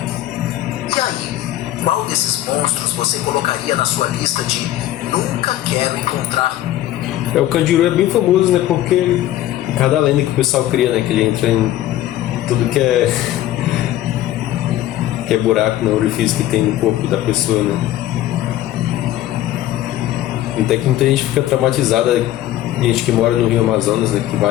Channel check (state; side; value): quieter; right; 13.8 dB